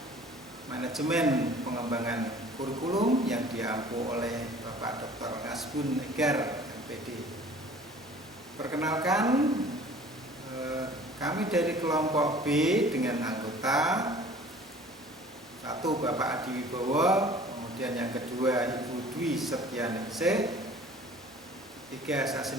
Manajemen Pengembangan Kurikulum yang diampu oleh Bapak Dr. Ngasbun Egar, MPD. Perkenalkan, kami dari kelompok B dengan anggota satu Bapak Adi Wibowo, kemudian yang kedua Ibu Dwi Setianingsih, tiga saya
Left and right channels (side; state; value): both; normal; correlation 0.48